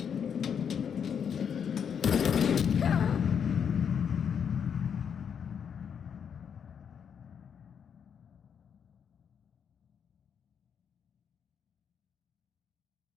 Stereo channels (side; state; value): right; quieter; 7.5 dB